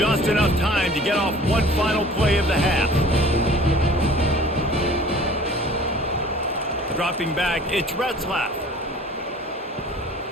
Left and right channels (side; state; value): both; normal; correlation 0.47